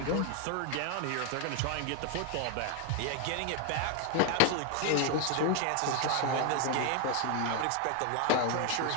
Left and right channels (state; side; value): different; both; correlation 0.01